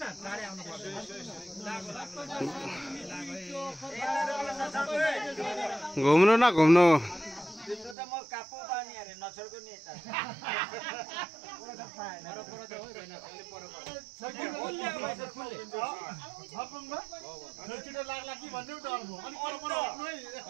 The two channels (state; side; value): drops out; left; at 8.0 s